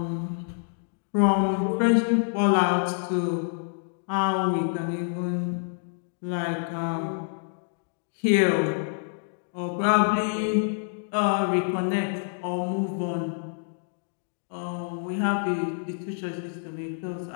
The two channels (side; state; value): right; silent; digital silence